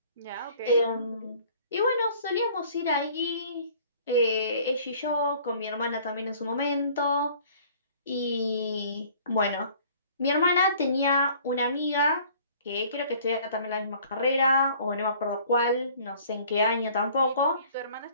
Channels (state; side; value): inverted; both; correlation -0.53